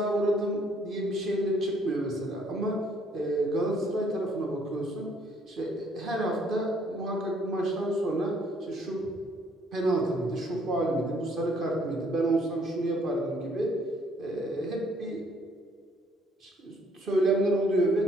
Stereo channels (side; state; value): both; normal; correlation 0.65